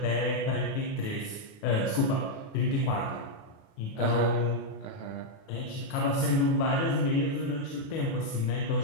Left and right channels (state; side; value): late; right; 36 ms